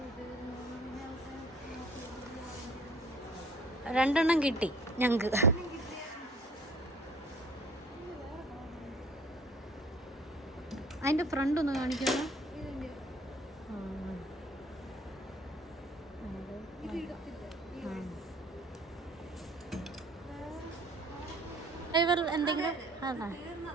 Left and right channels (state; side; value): normal; both; correlation 0.53